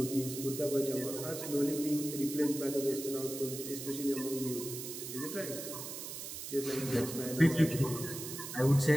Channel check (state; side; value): noise; right; hiss, 8 dB below the sound